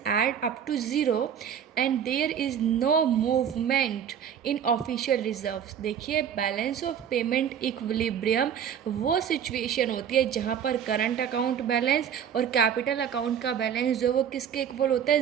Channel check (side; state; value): left; quieter; 8.5 dB